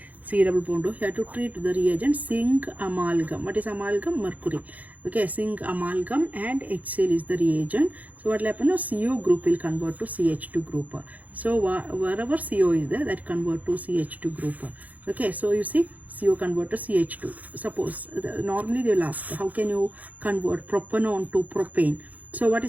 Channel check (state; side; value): late; left; 0.077 ms